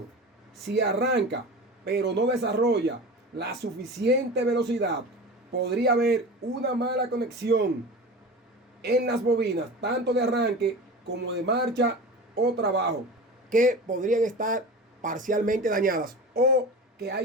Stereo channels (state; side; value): normal; both; correlation 0.32